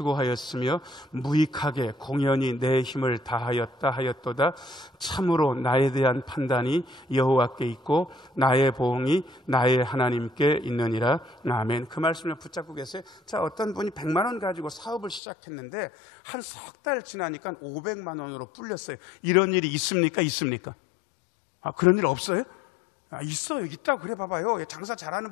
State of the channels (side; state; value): right; drops out; at 15.2 s